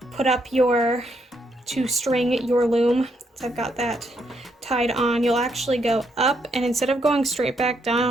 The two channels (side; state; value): both; normal; correlation 0.76